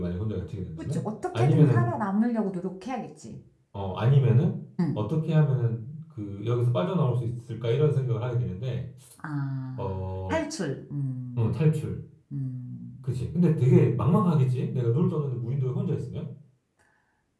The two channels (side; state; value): both; identical; correlation 1.00